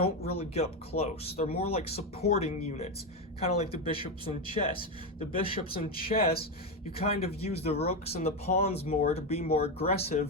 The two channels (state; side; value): normal; both; correlation 0.11